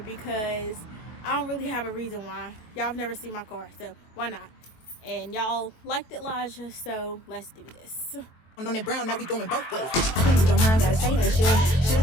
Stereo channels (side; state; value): right; late; 23 ms